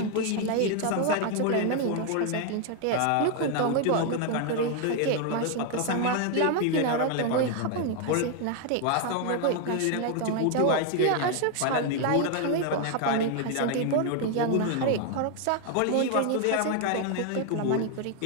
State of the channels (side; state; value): both; different; correlation 0.00